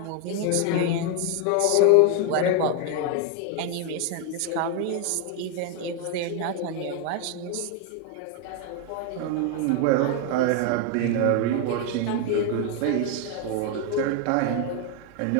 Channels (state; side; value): different; both; correlation 0.01